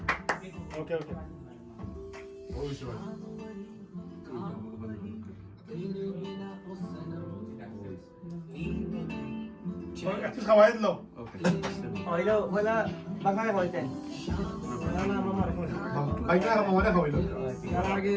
ওকে ওকে ওই সবাই একটু খাওয়াই দিলো হইলো হইলা বাঙালি হইতেন বাইকটা মামাটা খাওয়াইলো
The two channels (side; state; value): both; identical; correlation 1.00